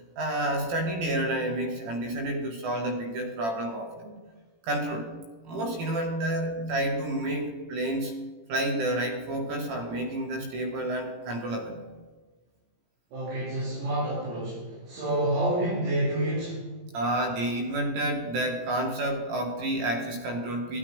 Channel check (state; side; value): late; left; 18 ms